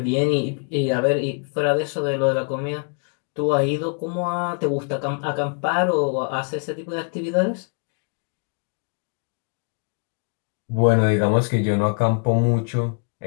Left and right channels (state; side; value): quieter; right; 39.8 dB